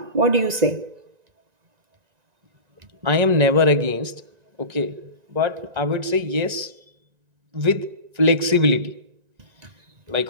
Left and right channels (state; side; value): late; left; 1.9 ms